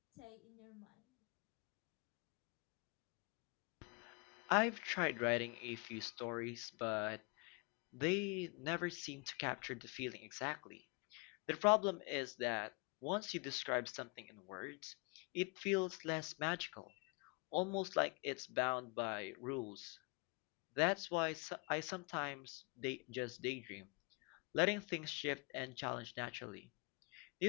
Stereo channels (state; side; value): quieter; right; 30.6 dB